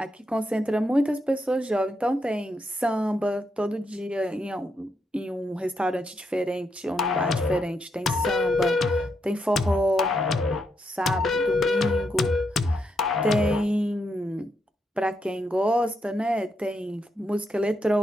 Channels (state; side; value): normal; both; correlation 0.80